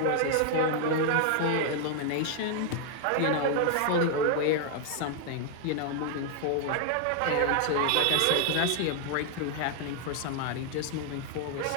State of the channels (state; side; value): different; both; correlation 0.00